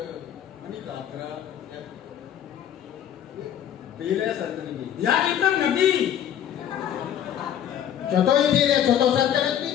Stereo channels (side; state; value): right; quieter; 10.2 dB